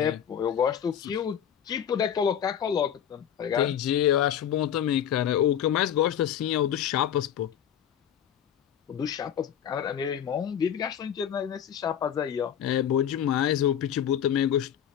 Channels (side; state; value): right; quieter; 9.4 dB